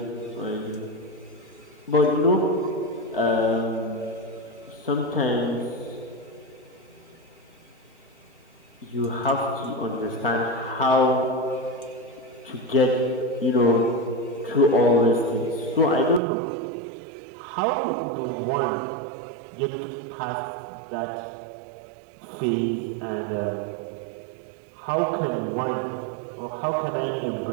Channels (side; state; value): left; drops out; at 16.2 s